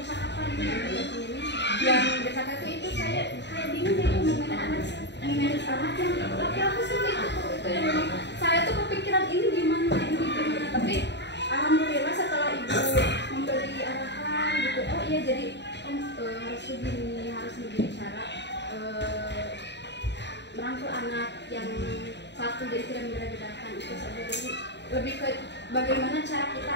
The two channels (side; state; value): right; late; 0.51 ms